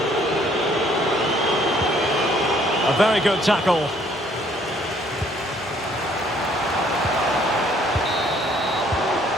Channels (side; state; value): both; normal; correlation 0.62